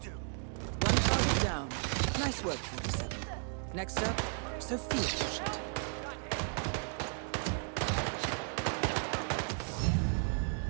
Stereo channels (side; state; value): left; silent; 55 dB below the other